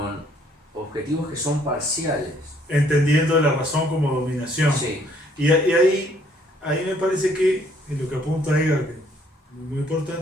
objetivos que son parciales. Entendiendo la razón como dominación. Sí, Y ahí me parece que, en lo que apunta Edgar, que es muy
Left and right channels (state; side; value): normal; both; correlation 0.64